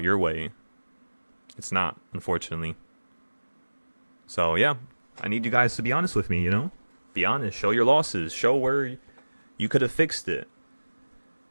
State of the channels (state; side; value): inverted; both; correlation -1.00